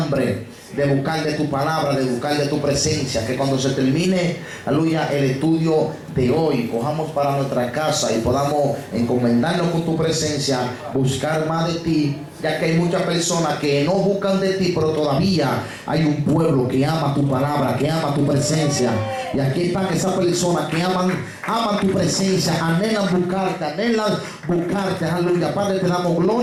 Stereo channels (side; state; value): both; identical; correlation 1.00